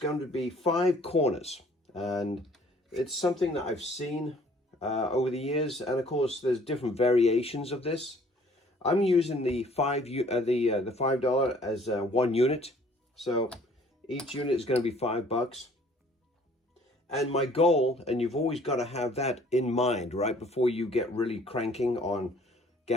to be 5 corners. And it's something that I've seen over the years. And of course, there's different variations of this. I'm using the $5 as 1 unit. So each unit is going to be $5. And my goal, and you've always got to have that in mind, right, before you get really cranking on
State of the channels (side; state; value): both; normal; correlation 0.56